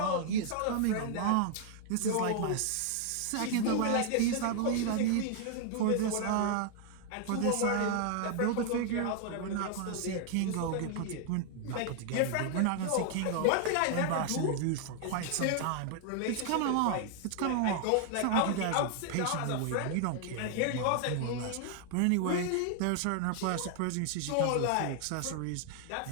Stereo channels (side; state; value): both; different; correlation 0.00